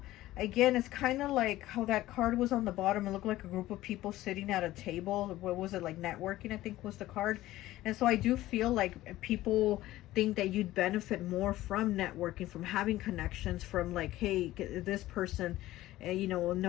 again, it's kind of like how that card was on the bottom. It looked like a group of people sitting at a table. What was it, like networking, I think was the card. And so I do feel like people think that you'd benefit more from networking, from having connections, from like, hey, this person, you know,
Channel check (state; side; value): quieter; right; 16.0 dB